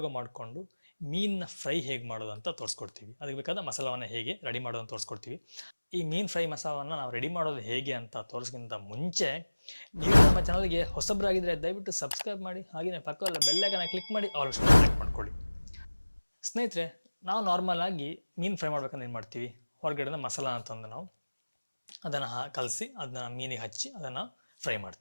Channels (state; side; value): inverted; both; correlation -1.00